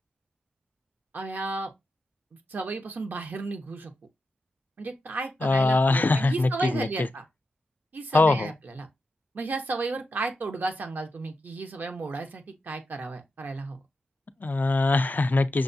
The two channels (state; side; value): normal; both; correlation 0.87